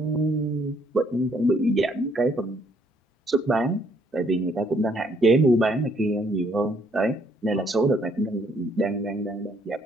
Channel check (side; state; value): both; normal; correlation 0.68